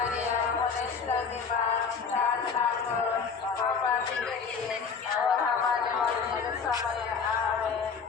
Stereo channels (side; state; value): right; quieter; 5.7 dB